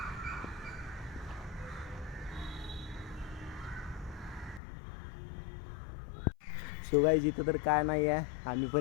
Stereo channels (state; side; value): drops out; right; at 4.6 s